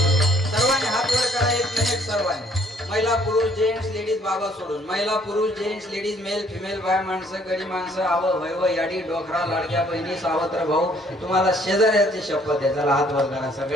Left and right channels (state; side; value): normal; both; correlation 0.63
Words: महिला पुरुष जेंट्स लेडीज बाबा सोडून महिला पुरुष जेंट्स लेडीज मेल फिमेल बाय माणसं गडी माणसं आव वैव याडी डोकरा लाडक्या बहिणी सावत्र भाऊ तुम्हाला शेजाऱ्याची शपथ आहे. चला हात वर करा